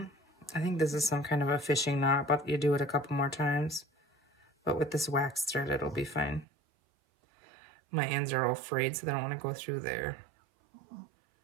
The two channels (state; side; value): drops out; left; at 6.5 s